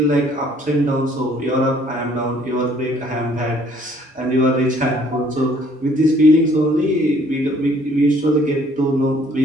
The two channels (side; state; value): both; normal; correlation 0.60